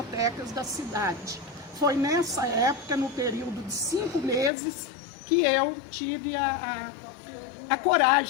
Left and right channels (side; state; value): right; drops out; at 4.5 s